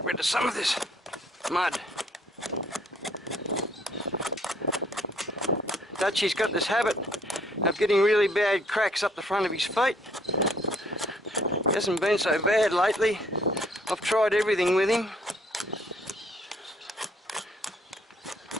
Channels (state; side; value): normal; both; correlation 0.64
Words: rid of some of this mud. Dutchy's got this habit of getting really bad cracks up the front of his feet. Hasn't been so bad lately. I've tried everything with him.